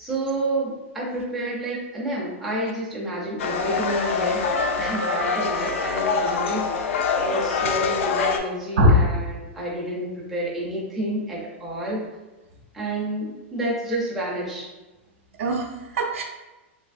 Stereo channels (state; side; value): normal; both; correlation -0.07